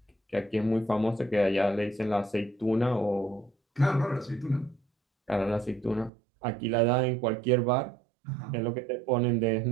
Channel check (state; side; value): drops out; left; at 6.1 s